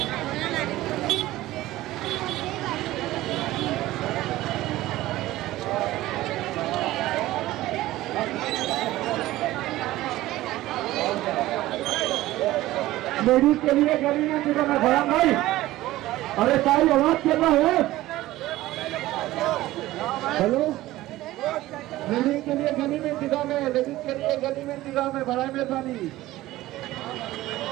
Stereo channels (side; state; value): left; quieter; 16.5 dB